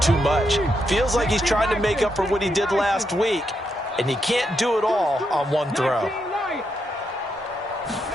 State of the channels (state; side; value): normal; both; correlation 0.81